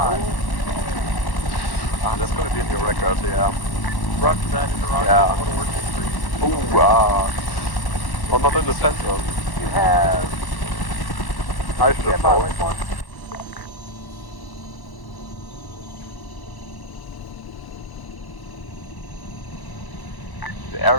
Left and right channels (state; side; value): late; right; 1.1 ms